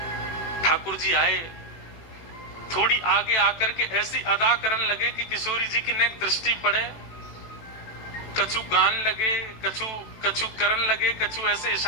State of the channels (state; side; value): late; right; 18 ms